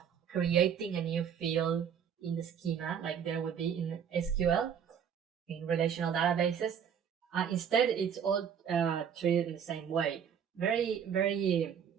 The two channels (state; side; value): quieter; left; 8.0 dB